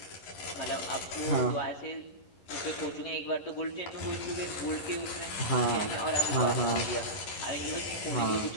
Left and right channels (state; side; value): late; right; 11 ms